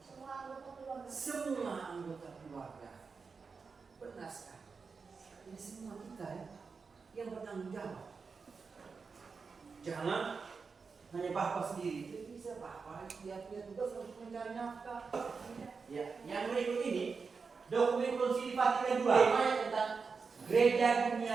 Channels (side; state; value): left; quieter; 5.0 dB